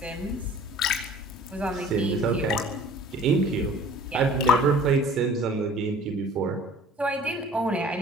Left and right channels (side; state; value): both; normal; correlation 0.48